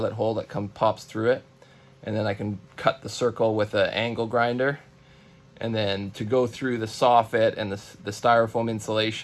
hole that pops through it, and then I can cut the circle with an angle grinder. And then to go through the soffit and the styrofoam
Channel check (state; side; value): identical; both; correlation 1.00